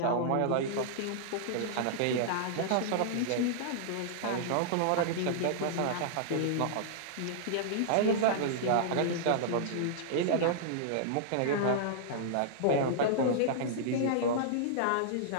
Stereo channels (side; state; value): both; different; correlation -0.02